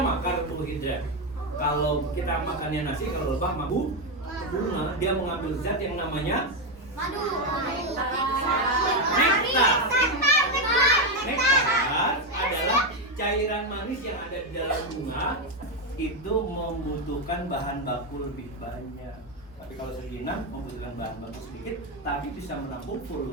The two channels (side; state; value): both; normal; correlation 0.07